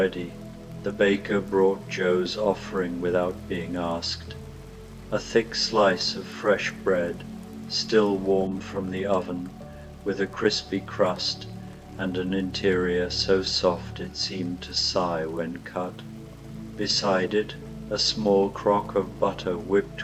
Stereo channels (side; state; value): both; identical; correlation 1.00